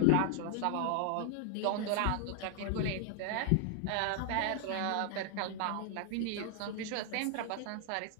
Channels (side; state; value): both; different; correlation 0.00